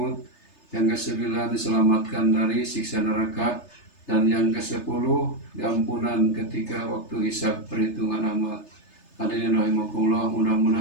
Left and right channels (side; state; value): right; late; 3.3 ms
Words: Yang kesembilan, diselamatkan dari siksa neraka. Dan yang kesepuluh, diampunan ketika waktu hisab perhitungan amal. Hadirin rahimakumullah,